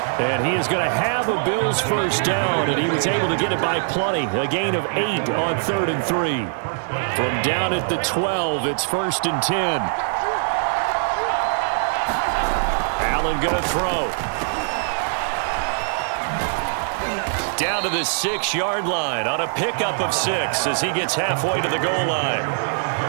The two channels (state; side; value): silent; left; 63 dB below the other